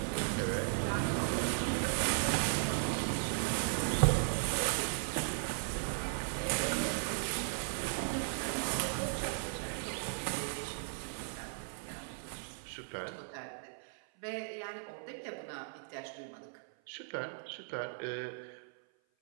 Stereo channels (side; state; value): left; silent; 53 dB below the other